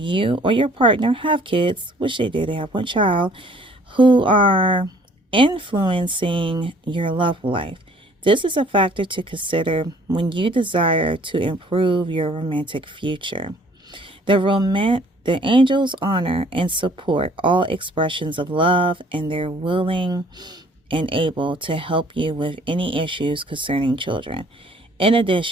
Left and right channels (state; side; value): normal; both; correlation 0.57